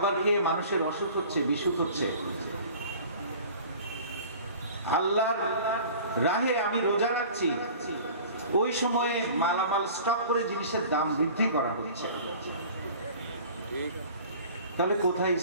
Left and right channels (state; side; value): inverted; both; correlation -0.44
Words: খেয়ে মানুষের অসুখ হচ্ছে, বিসুখ হচ্ছে। আল্লাহর রাহে আমি রোজা রাখছি, ওই সময়ে মালামাল স্টক করে জিনিসের দাম বৃদ্ধি করা হচ্ছে। তাহলে কোথায়